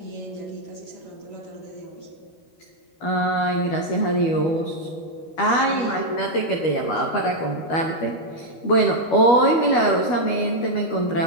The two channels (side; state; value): right; late; 12 ms